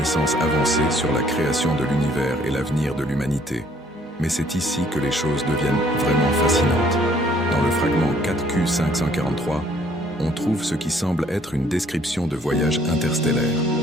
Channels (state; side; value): normal; both; correlation 0.61